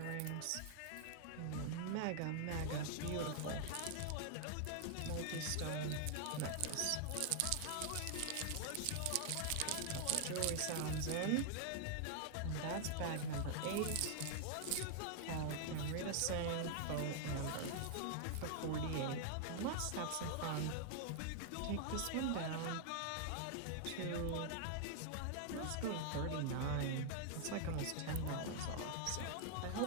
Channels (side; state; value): both; different; correlation 0.00